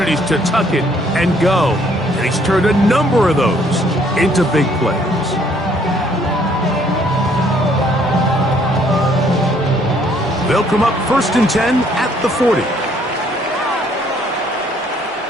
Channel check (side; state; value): both; normal; correlation 0.64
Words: to tuck it and go, and he's turned a number of those into big plays. They'll come up 1st and 10 at the 40.